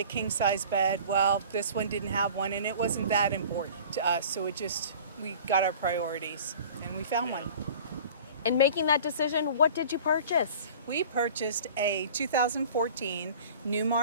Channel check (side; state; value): both; inverted; correlation -0.43